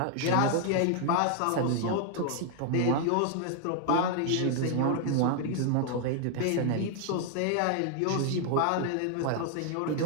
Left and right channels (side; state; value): both; different; correlation 0.00